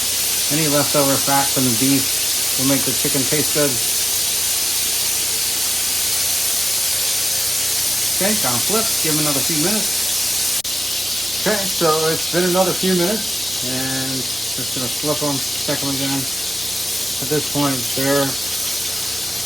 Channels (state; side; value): noise; left; rumble, 30 dB below the sound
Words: any leftover fat from the beef will make the chicken taste good. Okay, gonna flip, give them another few minutes. Okay, so it's been another few minutes, and just gonna flip them, check them again. At this point, they're